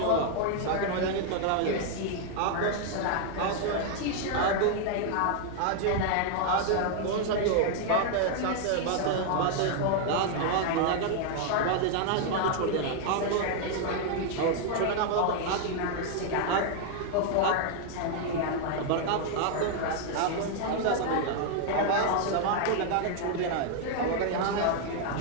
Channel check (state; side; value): different; both; correlation 0.00